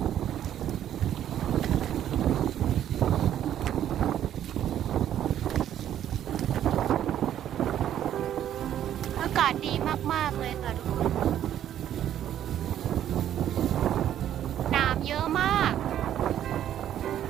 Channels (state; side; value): quieter; left; 10.9 dB